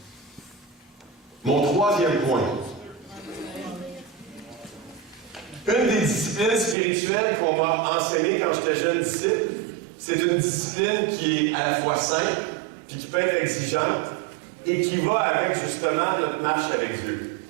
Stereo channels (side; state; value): left; drops out; at 6.8 s